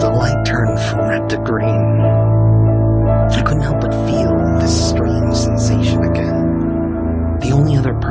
light turned from red to green, I couldn't help but feel this strange sensation again. The only other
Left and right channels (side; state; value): both; identical; correlation 1.00